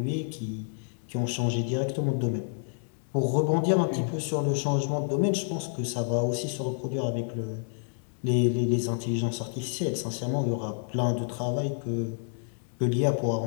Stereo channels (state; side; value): silent; right; 59 dB below the other